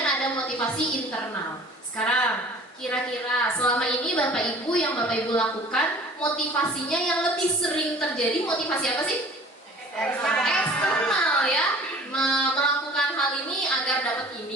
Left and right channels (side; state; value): both; normal; correlation 0.47